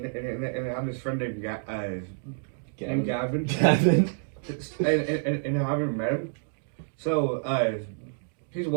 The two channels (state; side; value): silent; left; digital silence